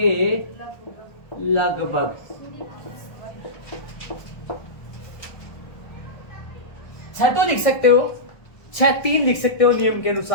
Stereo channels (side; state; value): right; late; 1.4 ms